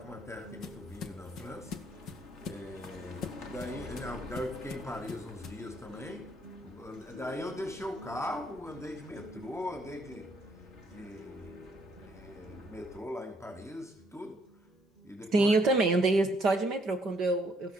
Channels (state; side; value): normal; both; correlation 0.68